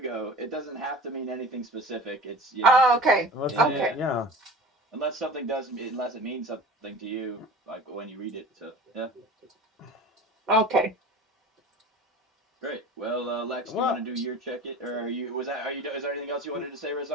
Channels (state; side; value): normal; both; correlation 0.38